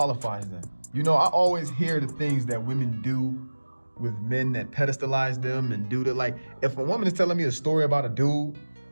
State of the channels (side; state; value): both; inverted; correlation -1.00